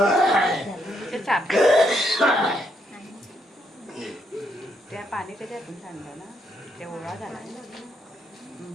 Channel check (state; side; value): normal; both; correlation 0.75